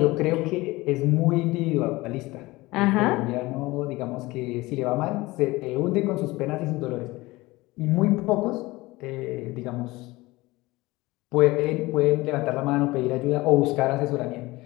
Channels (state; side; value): quieter; right; 20.6 dB